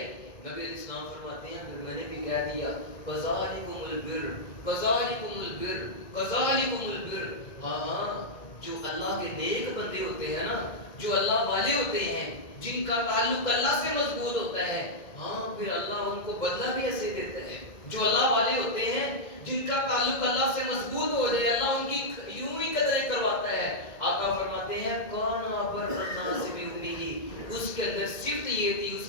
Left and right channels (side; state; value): right; late; 2.0 ms